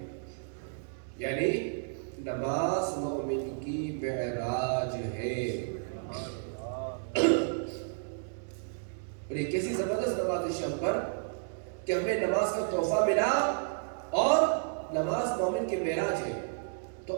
یعنی نماز مومن کی معراج ہے۔ اور یہ کیسی زبردست نماز شب پر کہ ہمیں نماز کا تحفہ ملا اور نماز مومن کی معراج ہے۔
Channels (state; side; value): silent; left; digital silence